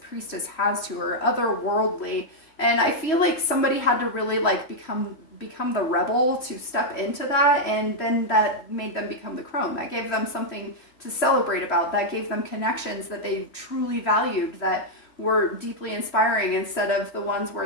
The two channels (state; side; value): late; right; 3.1 ms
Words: priestess has to her, otherworldly. And I feel like somebody had to really like become the rebel to step into that, and then that made them become the crone. That gave them something to celebrate about. That gave them connections that they truly valued, that were deeply inspiring, instead of the ones